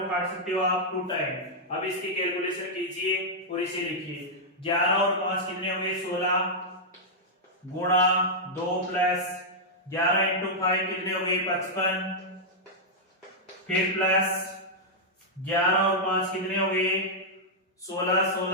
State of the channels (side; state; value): both; normal; correlation -0.07